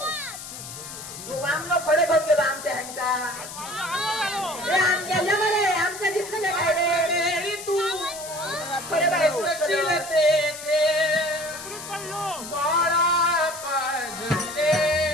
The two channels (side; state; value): left; noise; hiss, 11 dB below the sound